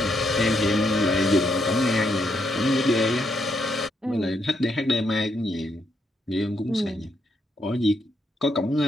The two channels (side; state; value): both; normal; correlation 0.77